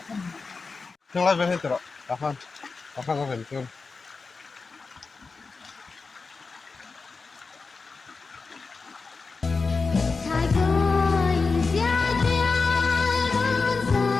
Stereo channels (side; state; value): right; quieter; 4.4 dB